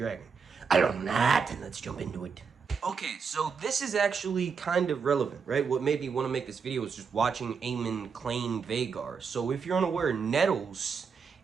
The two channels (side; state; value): left; quieter; 5.8 dB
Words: A long night, and let's jump into it. Okay, so this is actually kind of relevant, right? What made me want to make this video was just watching Aemon claim Vhagar. So if you're unaware, Nettles